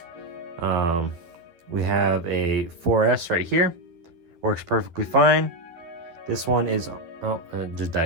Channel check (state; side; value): late; left; 11 ms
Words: We have a 4S right here, works perfectly fine. This one is, it just